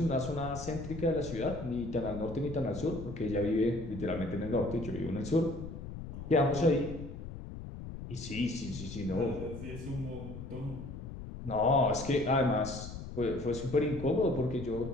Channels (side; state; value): left; noise; rumble, 10 dB below the sound